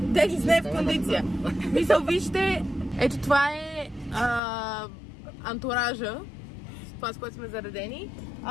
не е в кондиция. Мисъл, вижте, ето това е антуража. Това, с което сме заредени.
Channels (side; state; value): right; drops out; at 4.4 s